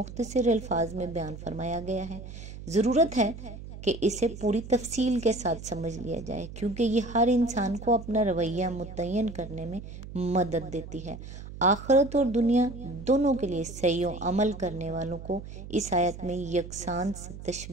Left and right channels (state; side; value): noise; right; hum, 12 dB below the sound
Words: الفاظ میں بیان فرمایا گیا ہے۔ ضرورت ہے کہ اسے پوری تفصیل کے ساتھ سمجھ لیا جائے، کیونکہ یہ ہر انسان کو اپنا رویہ متعین کرنے میں مدد دیتی ہے۔ آخرت اور دنیا دونوں کے لیے صحیح و عمل کرنے والوں کو اس آیت میں یکساں